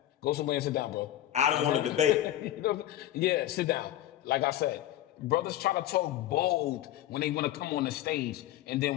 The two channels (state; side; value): quieter; right; 13.2 dB